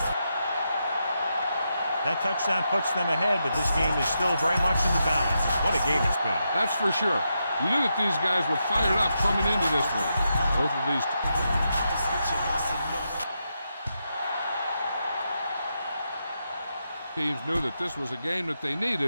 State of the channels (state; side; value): inverted; both; correlation -0.85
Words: That touchdown puts them ahead, but this game is still very much in the balance. What a game it's been. That's for sure. You knew that these guys were fired up coming into this one. Both of these teams knew that this was a game that they